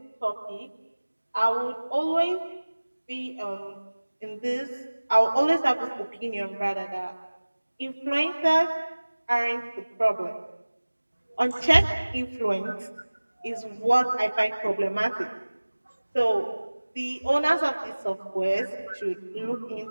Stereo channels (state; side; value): inverted; both; correlation -1.00